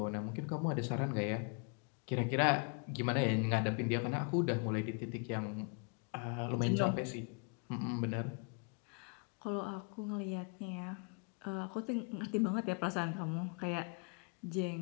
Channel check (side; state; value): right; quieter; 36.0 dB